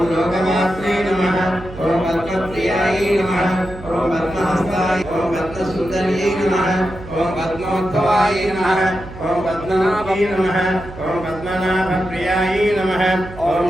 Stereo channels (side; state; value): right; noise; hum, 15 dB below the sound